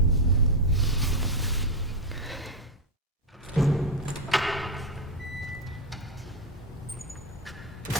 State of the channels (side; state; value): both; normal; correlation 0.06